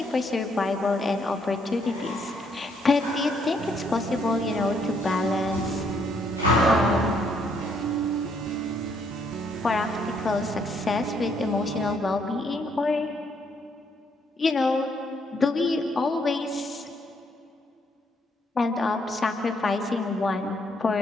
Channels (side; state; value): both; normal; correlation 0.71